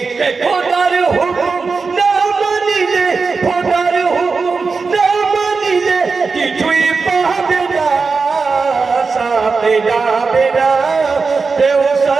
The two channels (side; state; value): left; quieter; 4.6 dB